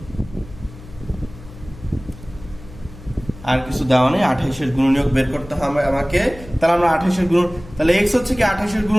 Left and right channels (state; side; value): noise; left; hum, 17 dB below the sound